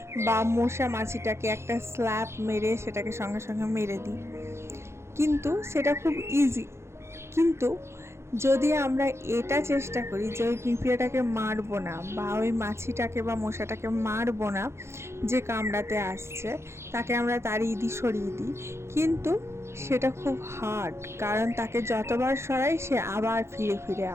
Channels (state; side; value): late; left; 0.13 ms